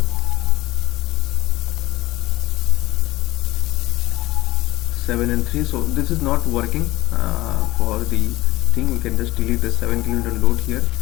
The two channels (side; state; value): right; quieter; 18.2 dB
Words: 7 and 3. So this is not working for the thing. We can just delete the 7 kN load here.